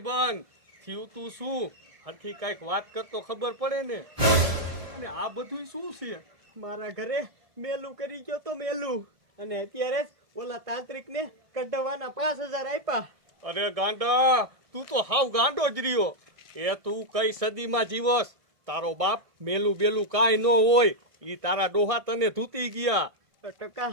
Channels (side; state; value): left; late; 1.7 ms